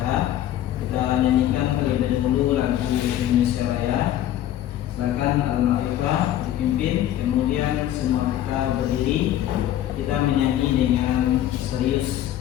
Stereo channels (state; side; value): quieter; right; 12.4 dB